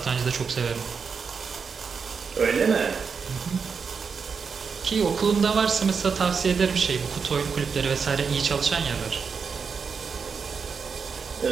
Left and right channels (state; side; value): quieter; left; 5.7 dB